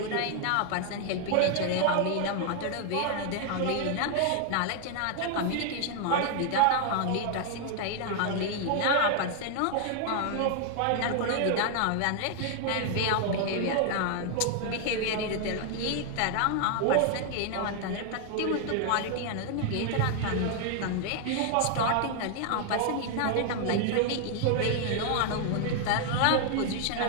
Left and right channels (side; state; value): both; different; correlation 0.00